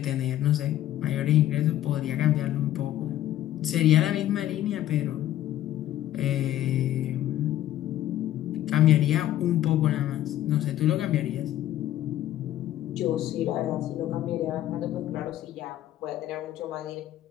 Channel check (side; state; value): right; quieter; 13.0 dB